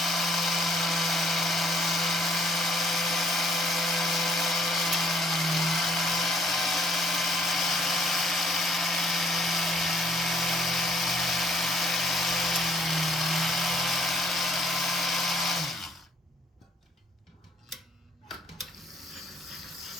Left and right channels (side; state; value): both; normal; correlation 0.63